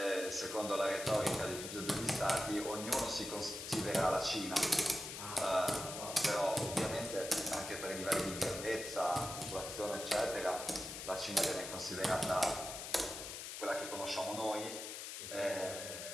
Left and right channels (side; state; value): left; noise; hiss, 7 dB below the sound